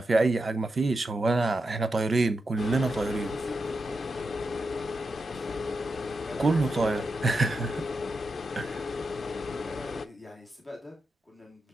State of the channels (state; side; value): normal; both; correlation 0.87